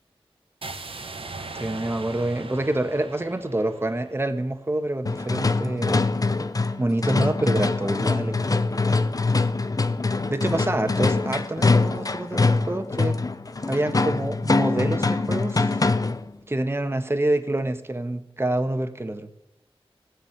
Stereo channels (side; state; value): both; normal; correlation 0.85